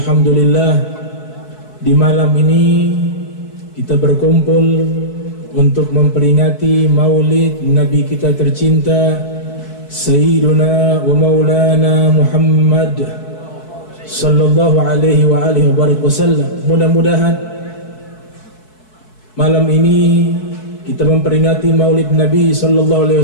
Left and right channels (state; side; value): late; right; 4.6 ms